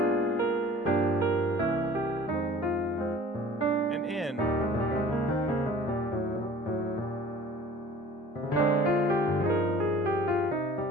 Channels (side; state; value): both; normal; correlation 0.46